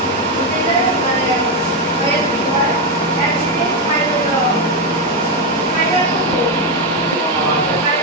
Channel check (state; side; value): normal; both; correlation 0.07